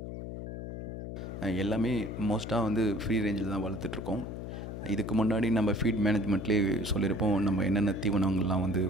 எல்லாமே மோஸ்ட்டாக வந்து ஃப்ரீ ரேஞ்சில் தான் வளர்த்துட்ருக்கோம். இதுக்கு முன்னாடி நம்ம ஃபீட் மேனேஜ்மெண்ட்லேயே சொல்லியிருப்போம் நம்ம என்னென்ன தீவனங்கள்லாம் வந்து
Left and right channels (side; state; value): left; noise; hum, 7 dB below the sound